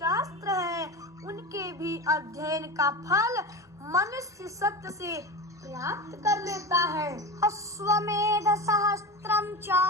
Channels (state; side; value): normal; both; correlation 0.26